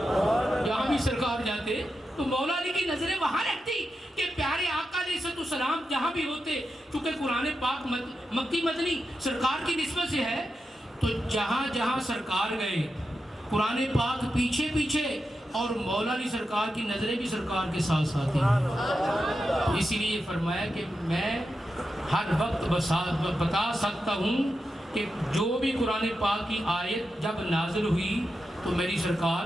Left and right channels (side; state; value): both; normal; correlation 0.89